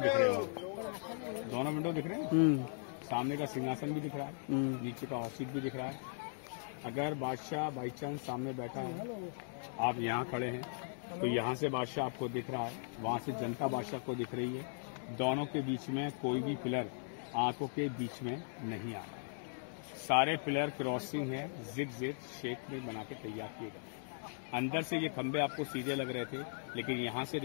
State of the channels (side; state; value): right; silent; digital silence